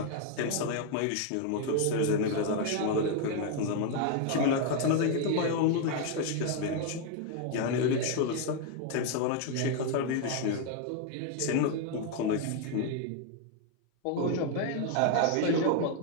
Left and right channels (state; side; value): different; both; correlation 0.01